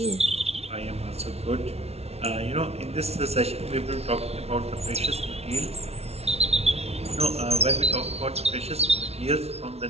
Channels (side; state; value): left; late; 0.31 ms